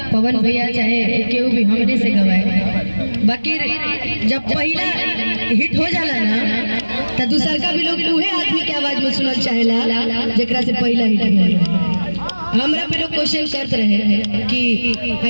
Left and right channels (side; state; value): both; inverted; correlation -1.00